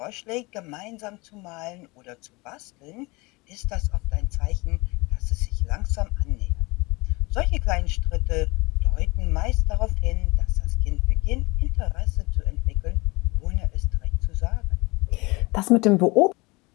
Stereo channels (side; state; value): right; quieter; 24.7 dB